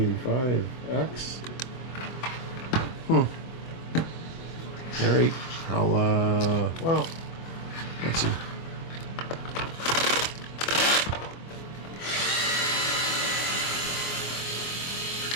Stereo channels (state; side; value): late; right; 24 ms